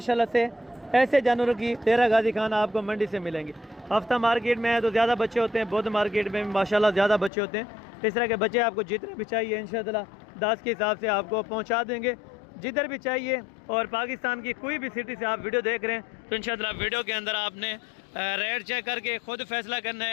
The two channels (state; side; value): drops out; right; at 7.3 s